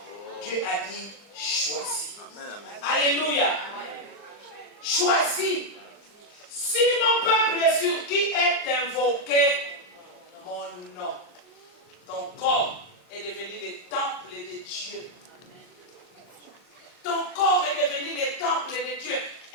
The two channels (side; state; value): right; late; 39 ms